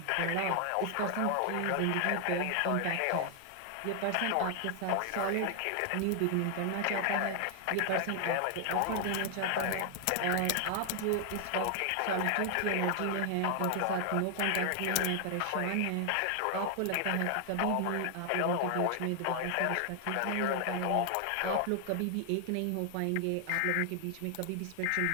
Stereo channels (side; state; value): both; different; correlation 0.00